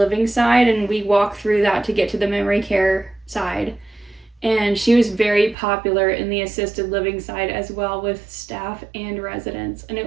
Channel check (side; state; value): left; drops out; at 5.6 s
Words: side, and we walk through that to get to the memory care side. And she was very popular in the assisted living side as well, with staff and residents, and it